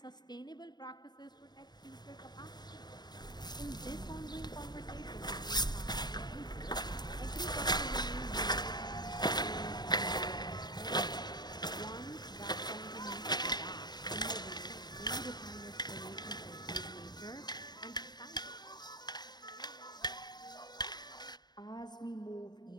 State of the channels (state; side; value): late; right; 0.20 ms